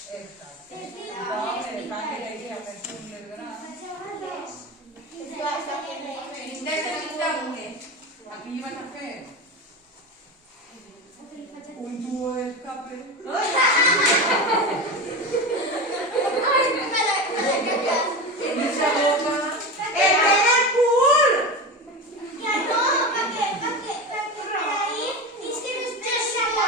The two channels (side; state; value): both; normal; correlation 0.24